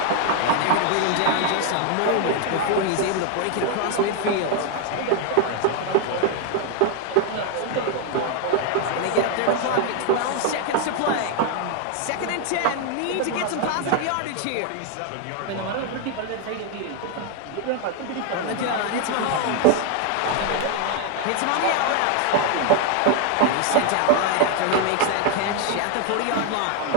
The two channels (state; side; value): different; both; correlation 0.01